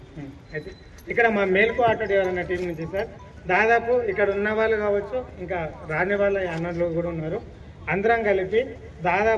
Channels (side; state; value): both; identical; correlation 1.00